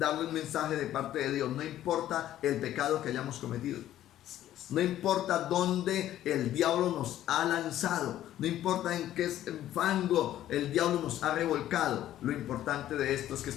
un mensaje de parte de Dios. No importa el pecado que hayamos cometido. No importa dónde el diablo nos ha lanzado, no importa en qué fango el diablo nos ha revolcado. Lo importante de esto es que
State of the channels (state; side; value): quieter; right; 12.7 dB